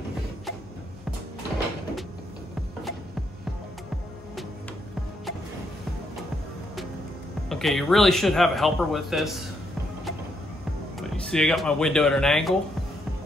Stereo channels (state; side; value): normal; both; correlation 0.76